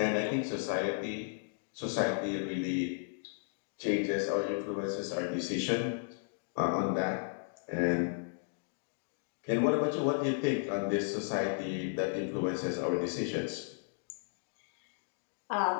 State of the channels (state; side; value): silent; right; digital silence